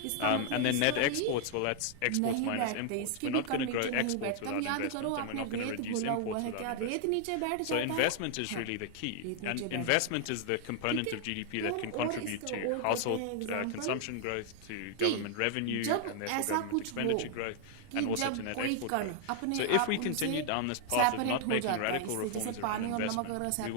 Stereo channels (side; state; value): both; different; correlation 0.00